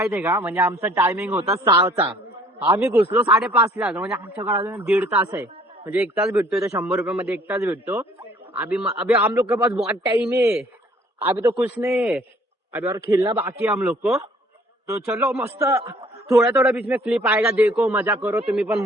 का म्हणजे आमचा टायमिंग होता 6चा आम्ही घुसलो 5:30 ला म्हणजे आमच्याकडे अजून 1.5 तास आहे म्हणजे 1 तास भेटतोय तर 100 रुपये मध्ये 1 तास भेटतो अभी हम लोग के पास बहुत टाइम है अभी तो कुछ नहीं है अभी और खेलना बाकी है हम लोग को तो चलो मस्त थोड़ा बीच में क्लिप आएगा देखो मजा करो तुम्ही पण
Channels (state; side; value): normal; both; correlation 0.57